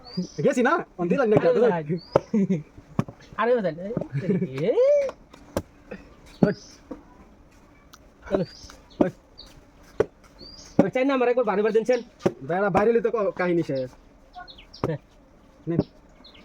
গেছি না অন দিলাম না ধরুন আরে হেবে দেন এই চলো চাই না আমার একবার বাড়ি দিনছেন বেড়া বাইরে তো কাহিনী শেষ নিন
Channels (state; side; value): identical; both; correlation 1.00